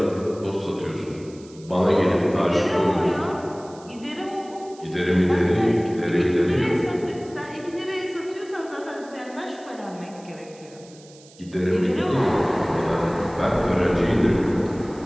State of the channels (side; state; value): right; noise; hiss, 24 dB below the sound